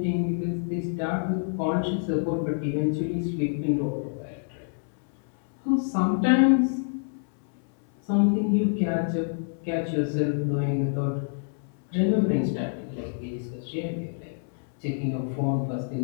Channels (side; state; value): right; silent; 60 dB below the other